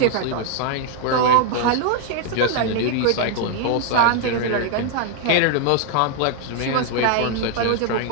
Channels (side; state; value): both; different; correlation 0.00